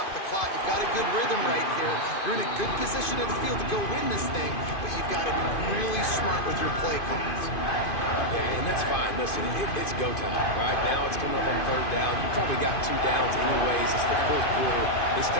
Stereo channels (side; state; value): right; late; 2.5 ms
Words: the clock. You've got a good rhythm right here. You're in a good position in the field to go win this thing, but you've got to be really smart with your play calls. Yeah, and that's fine. Listen, it's go time, right? Now it's coming up on third down. You probably got 2 downs anyways. It's the fourth quarter. It's